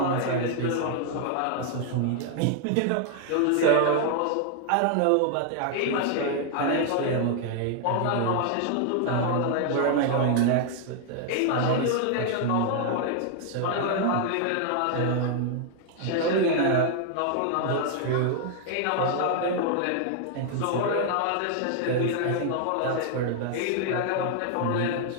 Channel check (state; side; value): different; both; correlation 0.00